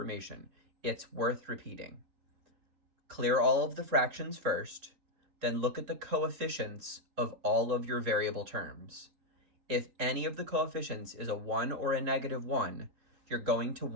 It's worth repeating. Clear all of the fractions first, then look at the coefficients of all of your variable terms. If any of the coefficients is a 1 or a negative 1, you're going to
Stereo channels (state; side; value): late; left; 3.7 ms